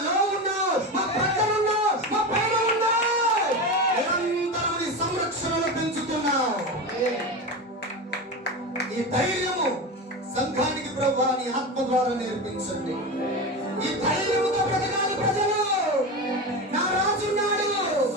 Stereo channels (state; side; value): normal; both; correlation 0.22